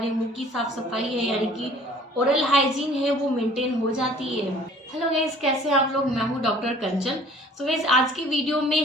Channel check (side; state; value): both; normal; correlation 0.52